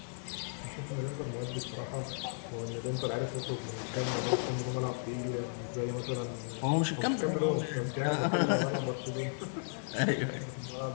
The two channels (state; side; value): silent; right; 55 dB below the other